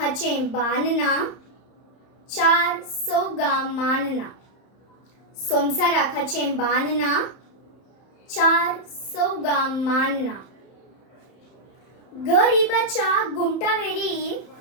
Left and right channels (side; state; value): right; late; 31 ms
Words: बांदना चार सौगा मानना। संवसाराखाचें बांदना चार सौगा मानना। गरीबाच्या